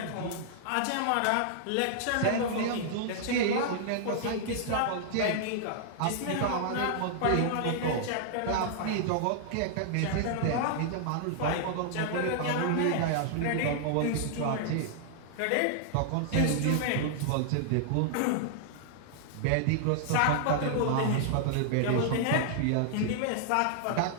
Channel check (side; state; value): both; different; correlation -0.01